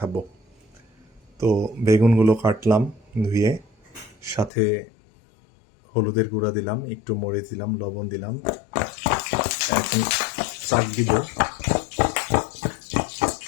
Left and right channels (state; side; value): drops out; right; at 4.5 s